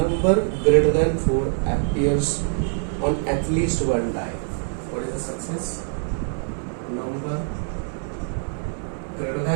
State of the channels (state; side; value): silent; left; 63 dB below the other